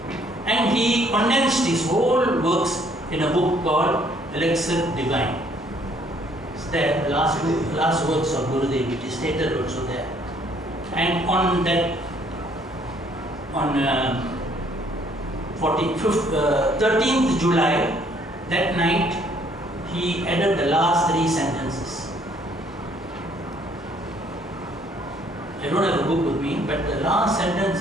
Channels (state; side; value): normal; both; correlation 0.63